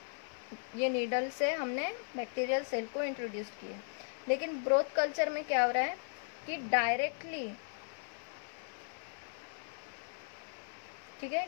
ये नीडल से हमने बैक्टीरियल सेल को इंट्रोड्यूस किए। लेकिन ब्रोथ कल्चर में क्या हो रहा है कि डायरेक्टली, ठीक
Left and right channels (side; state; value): right; silent; 53 dB below the other